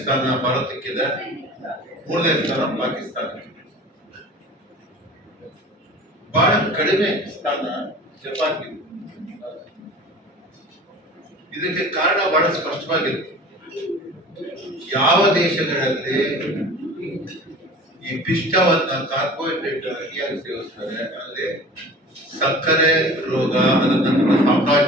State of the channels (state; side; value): normal; both; correlation 0.41